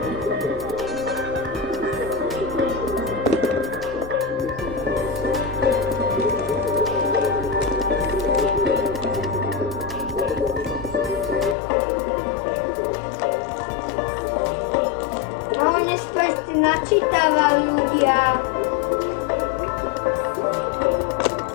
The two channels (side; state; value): right; drops out; at 11.6 s